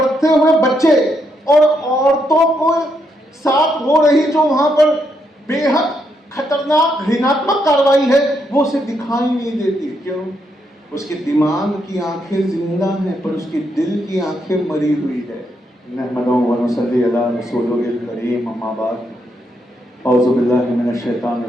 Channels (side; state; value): both; normal; correlation 0.78